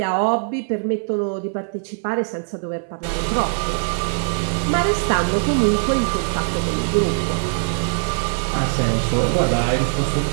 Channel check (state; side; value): silent; left; 65 dB below the other